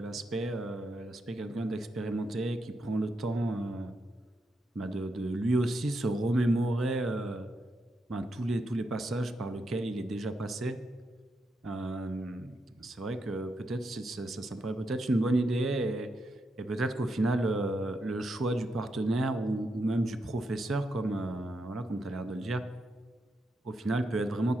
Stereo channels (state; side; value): normal; both; correlation 0.83